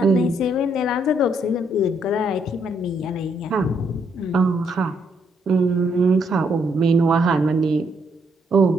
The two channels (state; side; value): normal; both; correlation 0.73